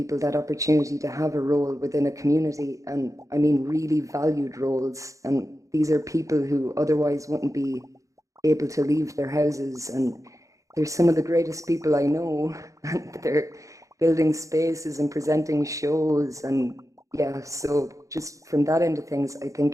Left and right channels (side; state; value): left; late; 0.16 ms